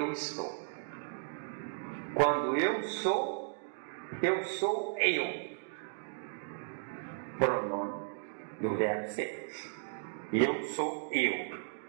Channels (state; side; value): silent; left; digital silence